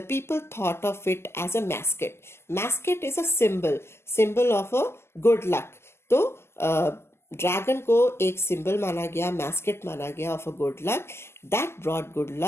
people thought of it as a mascot. Mascot is a symbol of a good luck. तो dragon को एक symbol माना गया, mascot माना गया of a good luck. That brought good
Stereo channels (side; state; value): right; late; 0.12 ms